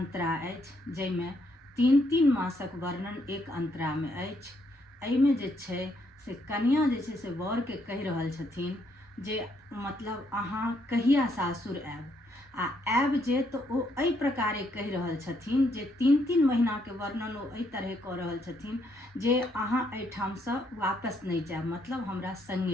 अछि, जाहिमे 3 मासक वर्णन एक अंतरा में अछि। एहिमे जे छै से कन्या जे छै से वर के कहि रहल छथिन जे मतलब अहाँ कहिया सासुर आयब, आ आयब जे तो ओ एहि प्रकारे कहि रहल छथिन जे 3 महीना के वर्णन ओ एहि तरह कऽ रहल छथिन जे अहाँ एहिठामसँ वापस नहीं जायब, मतलब हमरा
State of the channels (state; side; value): normal; both; correlation 0.73